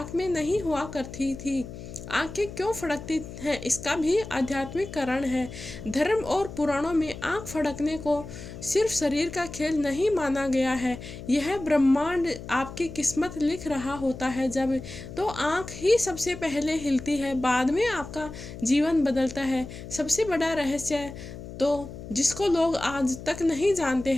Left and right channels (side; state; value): left; noise; hum, 12 dB below the sound